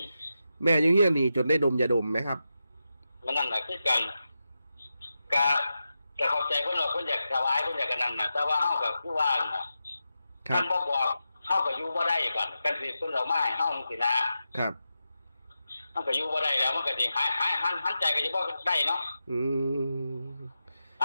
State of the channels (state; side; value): inverted; both; correlation -0.90